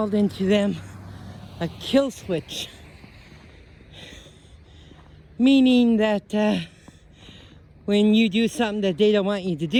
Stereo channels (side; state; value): both; identical; correlation 1.00